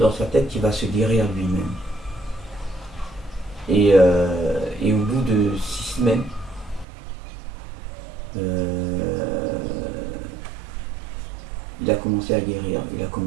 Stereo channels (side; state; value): left; drops out; at 6.9 s